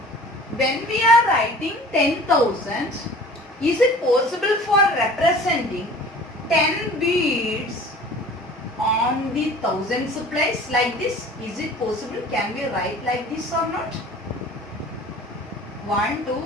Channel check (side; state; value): both; normal; correlation 0.45